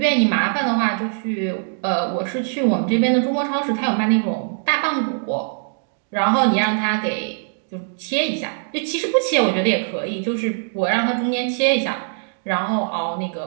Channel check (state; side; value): silent; left; 65 dB below the other